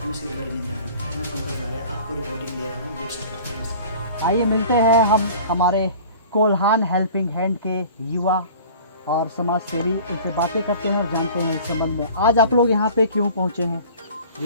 से बड़ी निंदा करता है। मैं पंकज आर्य आपको रिपोर्टिंग दे रहा हूँ बिरसा की तरफ से। आइए मिलते हैं हम हमारे कोल्हान हेल्पिंग हैंड के युवा और समाज सेवी, उनसे बातें करते हैं और जानते हैं इस संबंध में। आज आप लोग यहाँ पे क्यों पहुँचे हैं?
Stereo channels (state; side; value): inverted; both; correlation -0.44